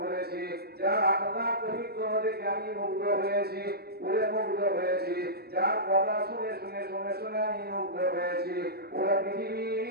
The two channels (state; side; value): late; left; 0.46 ms